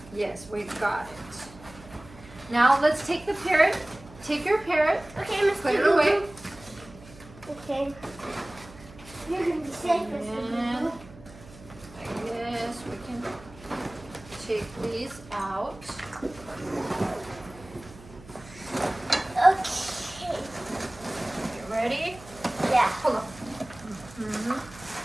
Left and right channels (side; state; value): right; noise; hum, 20 dB below the sound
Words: Yes, we've got it. Now let's take the parrot. Take your parrot. Okay, Mr. Put it Boo-Boo. away. Okay. You're gonna be safe, Mr. And Boo-Boo. like this, we can take these out. Okay. You ready? Yeah. Hold on. Mm-hmm.